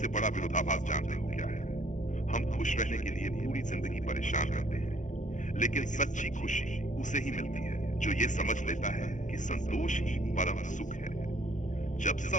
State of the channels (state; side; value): late; right; 0.36 ms